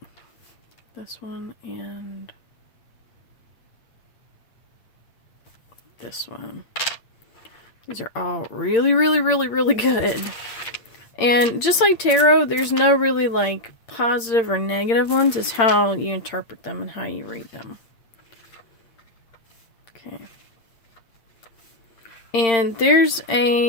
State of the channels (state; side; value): late; right; 8.7 ms